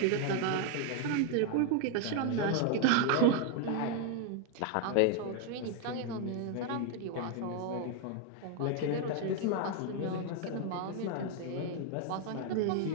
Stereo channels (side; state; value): both; different; correlation 0.01